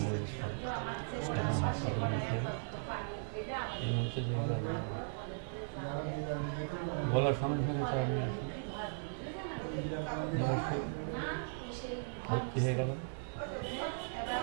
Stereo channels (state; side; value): silent; left; 53 dB below the other